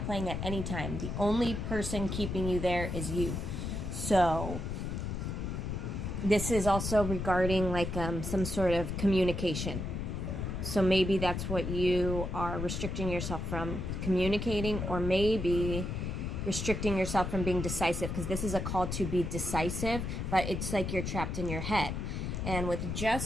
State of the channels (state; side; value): noise; left; rumble, 3 dB below the sound